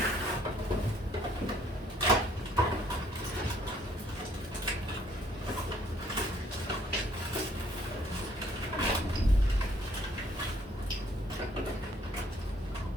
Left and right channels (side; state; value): both; normal; correlation 0.63